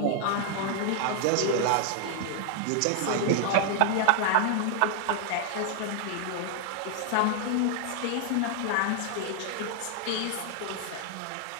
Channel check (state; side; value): different; both; correlation 0.00